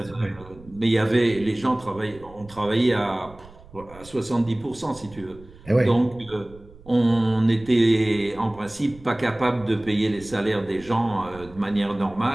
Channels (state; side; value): noise; right; rumble, 21 dB below the sound